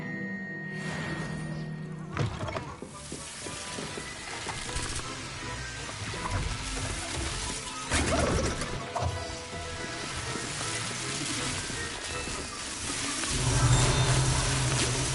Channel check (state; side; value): identical; both; correlation 1.00